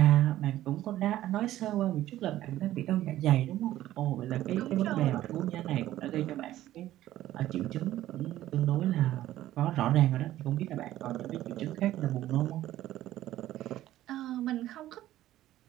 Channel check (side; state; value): left; quieter; 14.0 dB